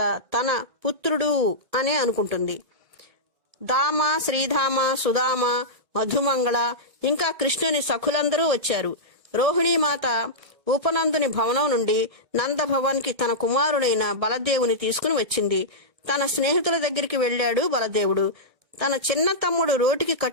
తన పుత్రుడు అనే అనుకుంటుంది. దామ, శ్రీధామ, సుధామ, మధుమంగళ ఇంకా కృష్ణుని సఖులందరూ వచ్చారు. రోహిణీమాత ఉపనందుని భవనం నుండి నందభవన్కి తన కుమారుడైన బలదేవుని తీసుకుని వచ్చింది. తన స్నేహితుల దగ్గరికి వెళ్ళాడు బలదేవుడు. తన చిన్న తమ్ముడు రోటికి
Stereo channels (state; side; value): late; left; 1.5 ms